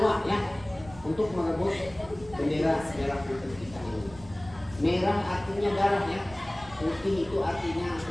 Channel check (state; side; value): noise; right; rumble, 19 dB below the sound